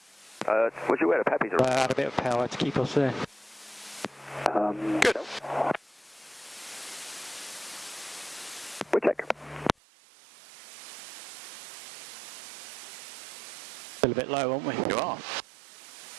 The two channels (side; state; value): left; drops out; at 9.8 s